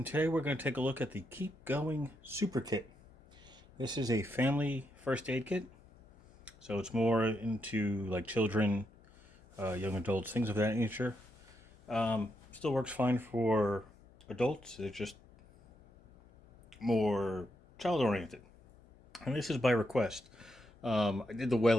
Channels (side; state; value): left; noise; hum, 26 dB below the sound